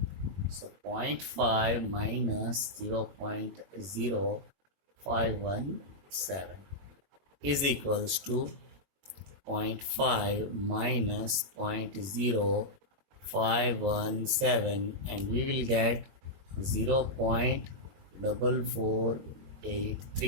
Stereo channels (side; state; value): left; late; 21 ms